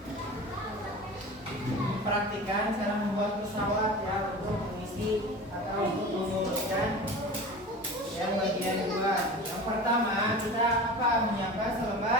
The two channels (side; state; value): both; normal; correlation 0.34